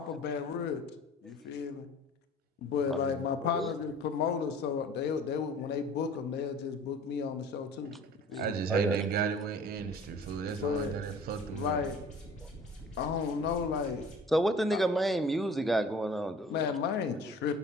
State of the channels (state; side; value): normal; both; correlation 0.46